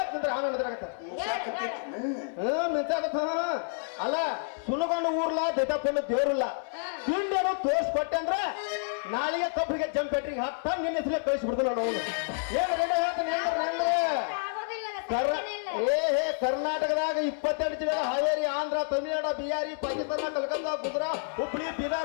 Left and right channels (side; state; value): right; silent; 58 dB below the other